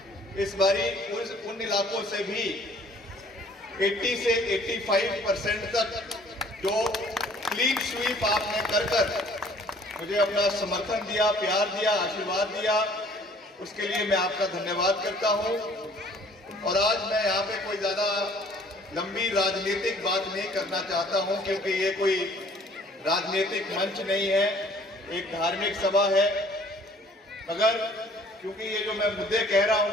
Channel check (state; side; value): normal; both; correlation 0.56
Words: इस बारी उन इलाकों से भी 80 से 85% तक जो क्लीन स्वीप आपने कर मुझे अपना समर्थन दिया, प्यार दिया, आशीर्वाद दिया, उसके लिए मैं आपका धन्यवाद करता हूं। और आज मैं यहाँ पे कोई ज्यादा लंबी राजनीतिक बात नहीं करना चाहता हूं, क्योंकि ये कोई राजनीतिक मंच नहीं है, एक धार्मिक सभा है। मगर क्योंकि ये जो मैं मुद्दे कह रहा